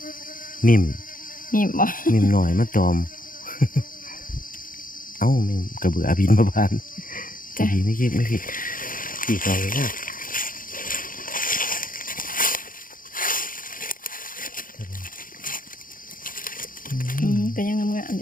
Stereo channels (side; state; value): right; late; 0.40 ms